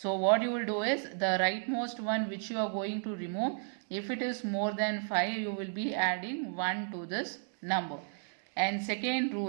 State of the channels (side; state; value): left; silent; digital silence